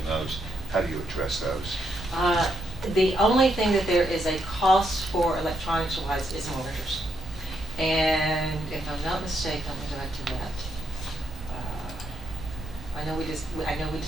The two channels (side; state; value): both; normal; correlation 0.78